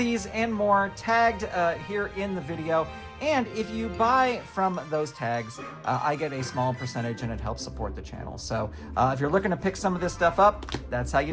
and more tagged here in the video. And if you buy from those tags, I get a small percentage and it helps support the channel. So if you're looking to pick some of this stuff up, that's how you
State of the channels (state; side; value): identical; both; correlation 1.00